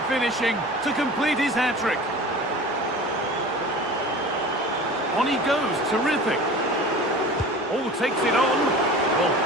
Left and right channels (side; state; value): both; normal; correlation 0.38